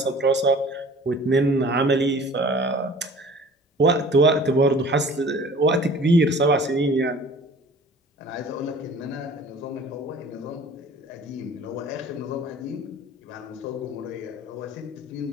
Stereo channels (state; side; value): normal; both; correlation 0.47